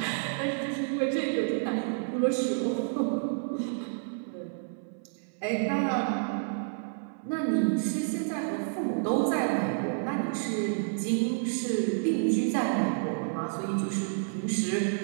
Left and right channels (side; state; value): left; silent; 57 dB below the other